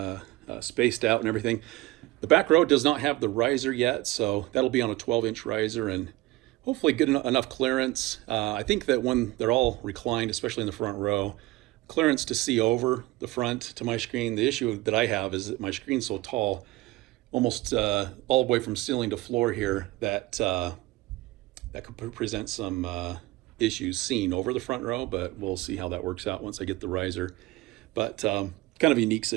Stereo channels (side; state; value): left; quieter; 19.4 dB